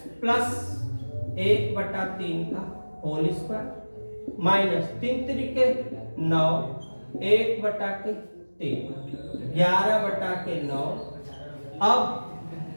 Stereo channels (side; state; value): both; inverted; correlation -1.00